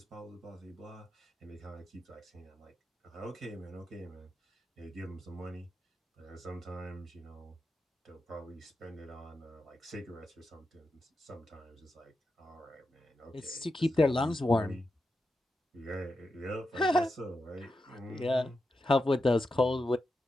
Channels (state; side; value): normal; both; correlation 0.88